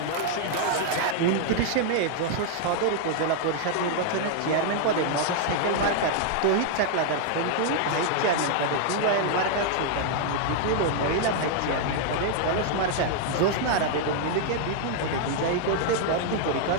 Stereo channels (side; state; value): both; different; correlation 0.00